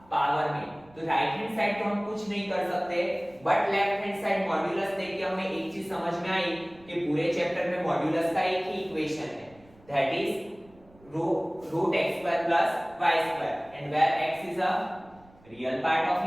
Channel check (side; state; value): right; noise; rumble, 27 dB below the sound